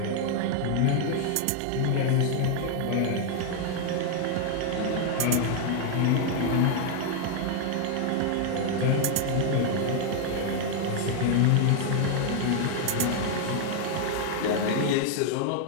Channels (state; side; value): different; both; correlation 0.00